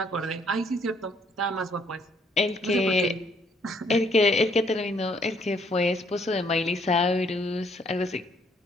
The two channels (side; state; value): both; normal; correlation 0.67